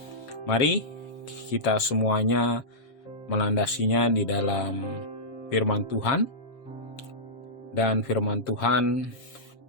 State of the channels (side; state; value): right; late; 7.3 ms